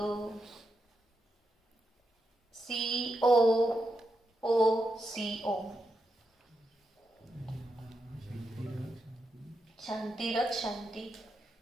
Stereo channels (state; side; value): normal; both; correlation 0.85